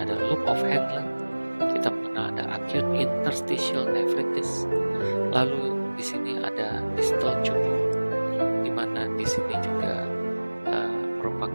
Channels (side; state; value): both; inverted; correlation -1.00